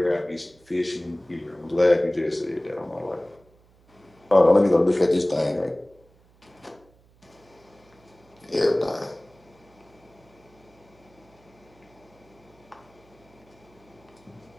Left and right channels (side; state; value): right; noise; hum, 30 dB below the sound